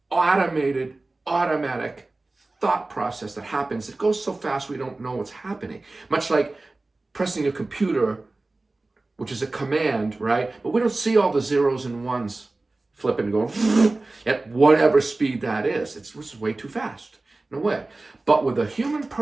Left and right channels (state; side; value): quieter; left; 3.1 dB